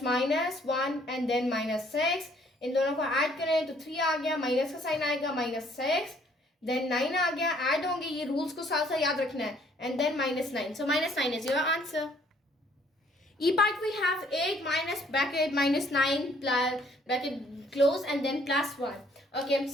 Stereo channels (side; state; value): both; normal; correlation 0.62